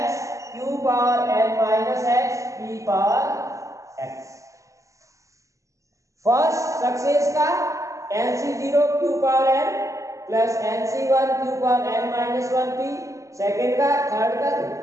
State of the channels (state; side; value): late; left; 0.15 ms